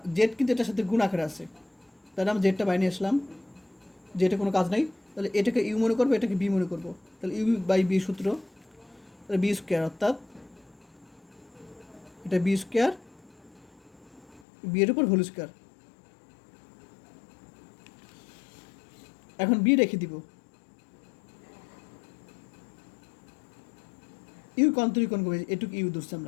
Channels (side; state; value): right; drops out; at 14.4 s